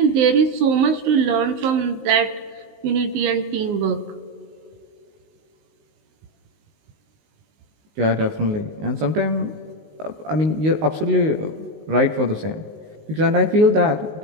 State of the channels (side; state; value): left; late; 19 ms